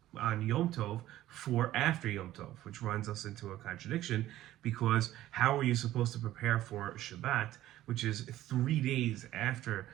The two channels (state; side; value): quieter; left; 14.3 dB